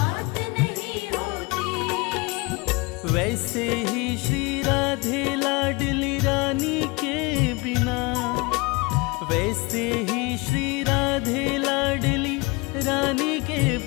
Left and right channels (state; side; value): quieter; right; 26.1 dB